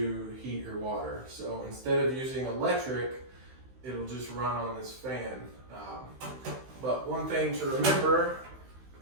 heat your water. So instead of using electric, it'll just run on this fan. But one thing to remember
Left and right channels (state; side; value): late; left; 15 ms